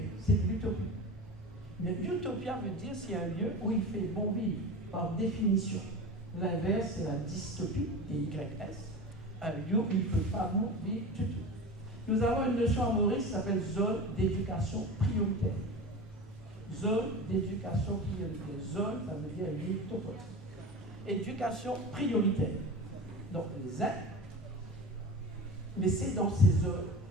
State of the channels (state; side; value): normal; both; correlation 0.31